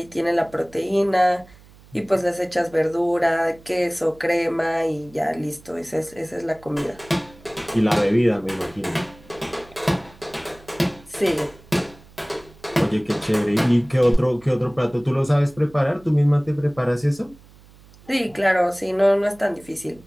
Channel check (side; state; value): right; noise; hum, 25 dB below the sound